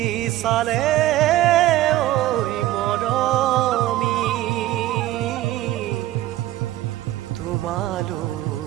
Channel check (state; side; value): quieter; left; 15.0 dB